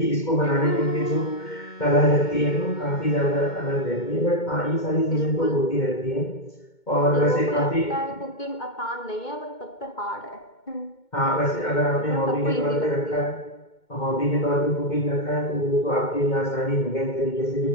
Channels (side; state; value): right; late; 2.2 ms